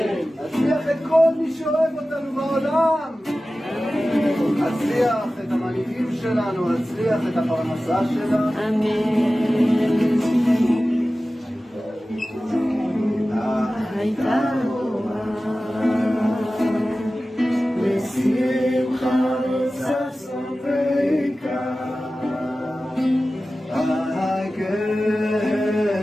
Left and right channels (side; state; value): both; normal; correlation 0.96